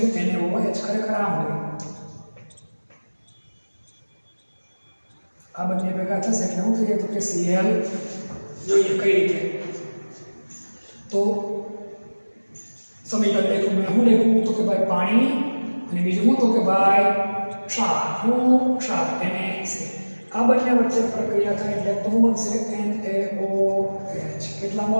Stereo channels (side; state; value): both; inverted; correlation -1.00